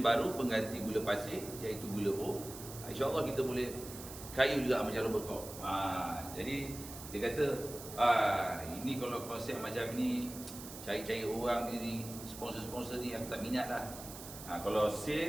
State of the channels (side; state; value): right; noise; hiss, 12 dB below the sound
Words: pengganti gula pasir iaitu gula O. InsyaAllah kita boleh kaya juga macam Robert Koch. Jadi dia kata ini kalau konsep macam ni, cari-cari orang ni, sponsor-sponsor ni aku tak minat lah. Kalau